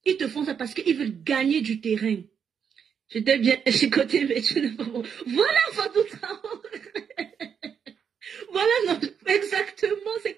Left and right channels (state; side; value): quieter; left; 7.3 dB